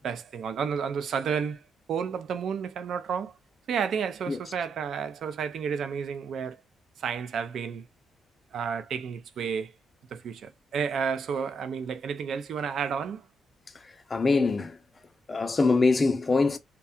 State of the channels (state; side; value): normal; both; correlation 0.80